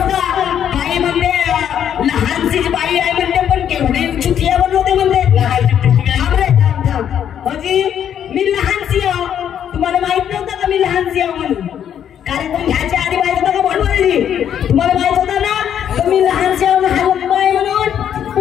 का? बाई म्हणते लहानशी बाई आहे म्हणते, पण केवढे चुटिया बनवते म्हणते। अजी मी लहानशी आहो, तुम्हाला माहित नव्हतं का मी लहानशी आहो म्हणून? कार्यक्रम घ्यायच्या आधी माहित होतं का बोलवली? तुम्हाला माहित होतं ना तर मी लहानशी आहो हलत नाही म्हणून?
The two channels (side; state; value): right; quieter; 9.4 dB